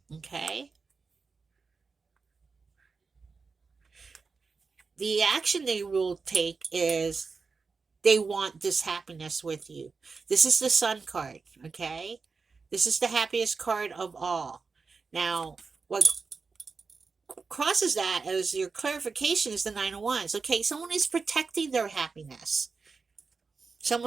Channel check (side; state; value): left; quieter; 4.7 dB